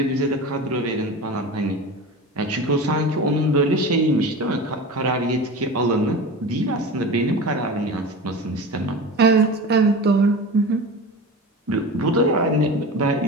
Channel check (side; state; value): both; normal; correlation 0.31